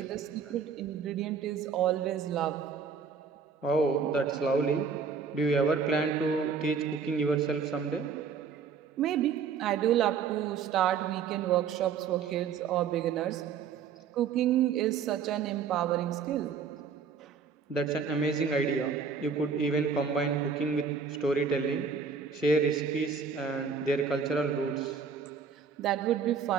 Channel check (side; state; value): left; quieter; 6.0 dB